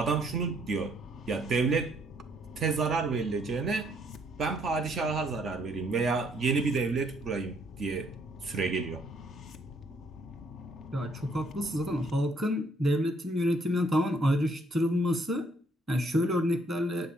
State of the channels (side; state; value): both; normal; correlation 0.68